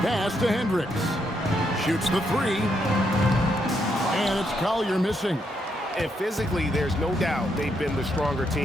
Pass to Hendricks. Shoots the three. And it's Collier missing. And physically, there's no doubt they've been the stronger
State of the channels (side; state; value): both; normal; correlation 0.78